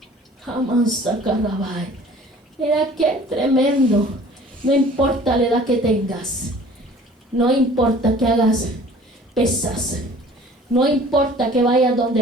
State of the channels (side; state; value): both; normal; correlation 0.49